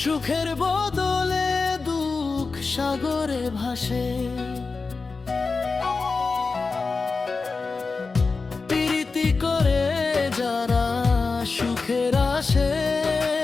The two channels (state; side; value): quieter; right; 4.2 dB